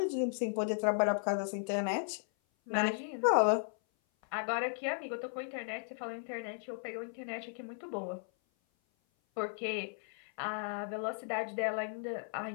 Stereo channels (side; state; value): right; silent; 54 dB below the other